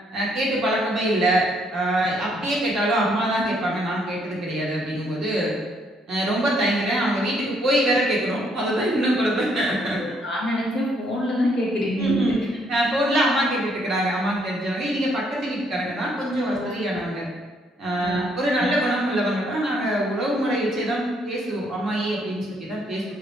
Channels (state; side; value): normal; both; correlation 0.69